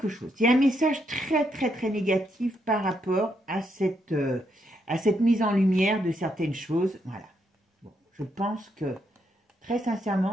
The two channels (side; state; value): both; normal; correlation 0.78